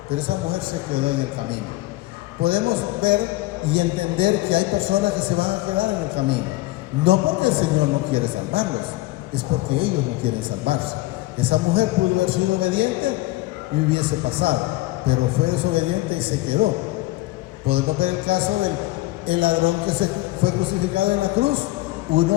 pero esa mujer se quedó en el camino. Podemos ver y entender que hay personas que se van a quedar en el camino, no porque el Señor no quiere salvarlos, es porque ellos no quieren salvarse. Esa mujer pudo haber sido obediente y hubiese pasado, pero fue desobediente y se quedó. Podemos ver el caso del ladrón que se fue crucificado en la cruz.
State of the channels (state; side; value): quieter; right; 18.9 dB